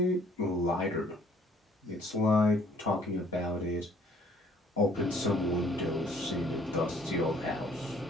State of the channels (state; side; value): normal; both; correlation 0.60